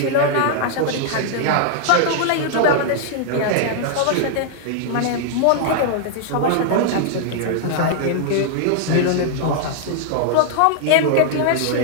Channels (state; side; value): different; both; correlation -0.01